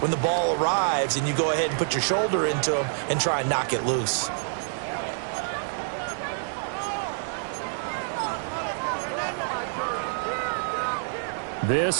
the ball arrives and you go ahead and put your shoulder into them and try and knock it loose.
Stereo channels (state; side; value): silent; left; 60 dB below the other